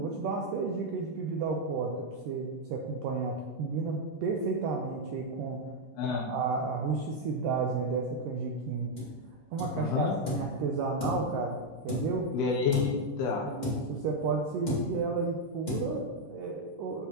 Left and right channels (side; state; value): both; normal; correlation 0.01